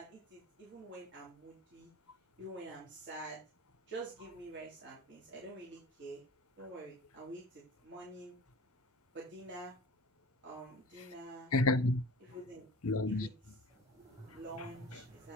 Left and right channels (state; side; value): normal; both; correlation 0.39